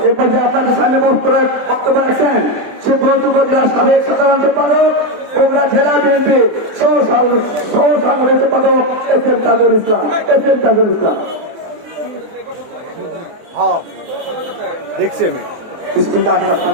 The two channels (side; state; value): left; late; 24 ms